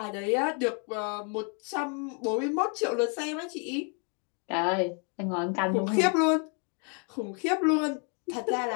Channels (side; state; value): right; quieter; 38.1 dB